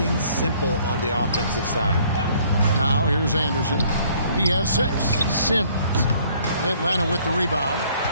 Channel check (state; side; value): inverted; both; correlation -0.60